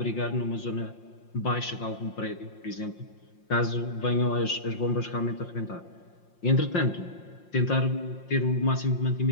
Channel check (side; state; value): right; late; 5.7 ms